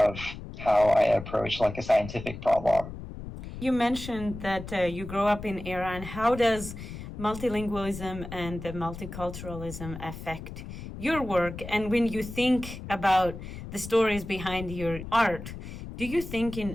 how I approach like a scientific problem. You mentioned that you grew up in Iran. How does multilingualism and multiculturalism affect your work? And when you think about the stories behind your art, do you think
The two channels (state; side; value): noise; left; rumble, 10 dB below the sound